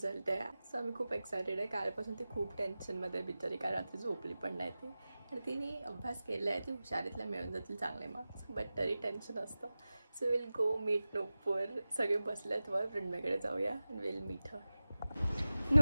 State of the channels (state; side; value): inverted; both; correlation -0.96